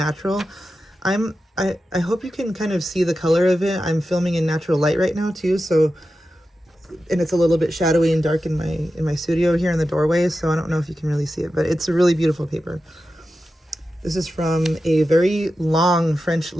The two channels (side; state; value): both; normal; correlation 0.92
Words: I hope you can kind of see the color of it. I'm filming in natural light right now too, so, and it's a little bit shadowy and dark in my studio here in the doorway, so I don't know if you can really see it, but it's a really beautiful paper. This is from a very long French